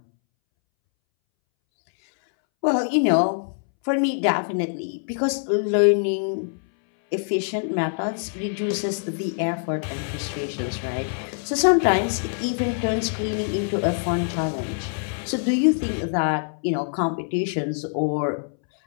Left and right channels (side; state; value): right; silent; 63 dB below the other